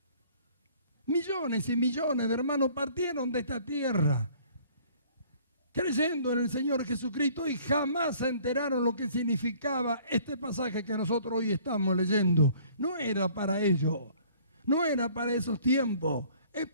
Millones y millones de hermanos partieron de esta tierra creyendo en el Señor Jesucristo y jamás se enteraron lo que significaba este pasaje que nosotros hoy estamos leyendo. No era para ellos, no era para esos tiempos, es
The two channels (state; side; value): inverted; both; correlation -0.55